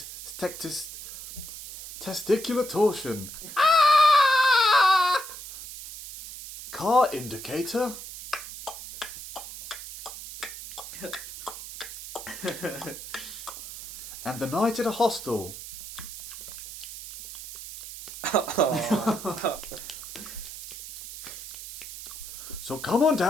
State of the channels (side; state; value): right; noise; hiss, 11 dB below the sound